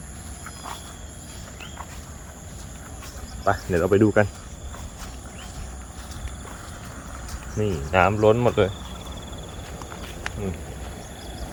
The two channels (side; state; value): both; identical; correlation 1.00